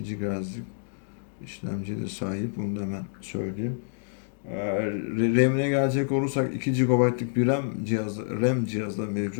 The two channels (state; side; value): silent; right; digital silence